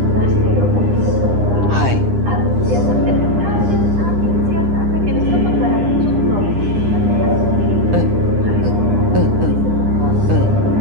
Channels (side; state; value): left; late; 9.9 ms